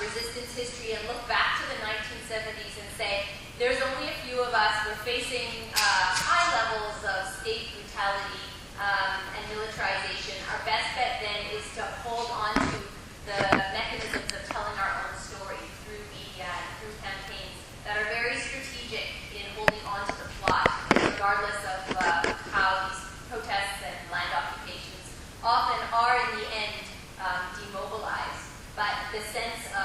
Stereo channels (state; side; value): identical; both; correlation 1.00